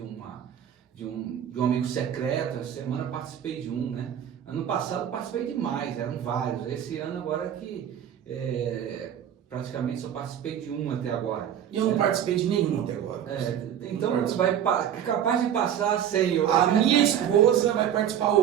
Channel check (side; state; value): left; quieter; 9.8 dB